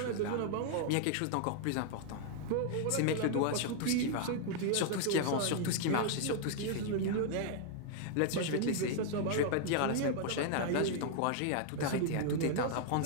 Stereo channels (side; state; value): both; different; correlation 0.00